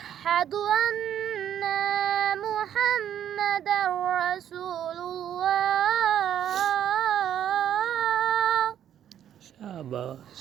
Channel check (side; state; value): left; quieter; 10.2 dB